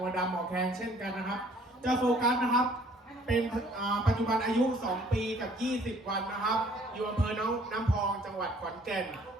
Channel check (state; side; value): normal; both; correlation 0.58